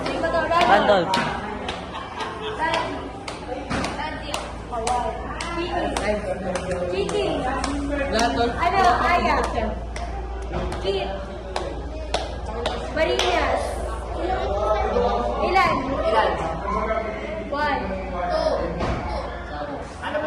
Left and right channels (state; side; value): identical; both; correlation 1.00